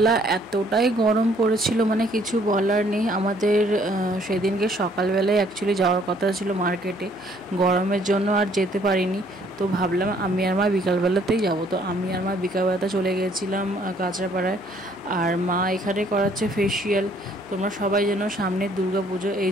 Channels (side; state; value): right; noise; hum, 29 dB below the sound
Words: এতটাই গরম পড়েছিল, মানে কিছু বলার নেই। আমাদের সেদিনকে সকালবেলায় অ্যাকচুয়ালি যাওয়ার কথা ছিল মার্কেটে, গরমের জন্য আর যেতে পারিনি। তো ভাবলাম আমি আর মা বিকালবেলাতেই যাব। তো আমি আর মা বিকালবেলাতে চলে গিয়েছিলাম কাঁচরাপাড়ায়। আর মা এখানে করাচ্ছে ফেসিয়াল। তোমরা সবাই যেন সামনে দুর্গাপুজো,